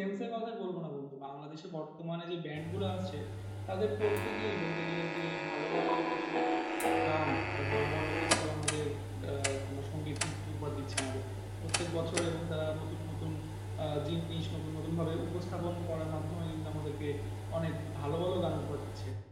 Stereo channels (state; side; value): identical; both; correlation 1.00